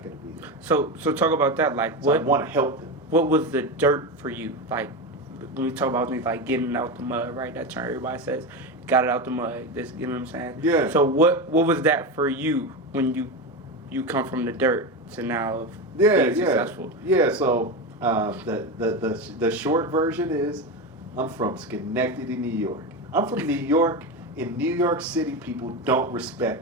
going to be there. So talk about that. Like, So what I want to help them. what was the dirt for you? Like, when we talk about things like getting out the mud, right? That term everybody says, got it out the mud. This, you know what I'm saying? Yeah. So what was that for you when you come from the dirt to now of being successful? Yeah. So the short version is, I'm from Schenectady, New York. I'm from New York. In New York City, people don't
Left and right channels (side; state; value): both; normal; correlation 0.18